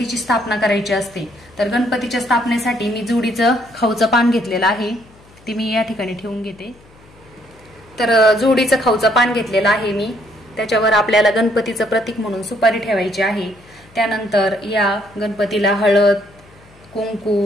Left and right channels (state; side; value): noise; left; hum, 27 dB below the sound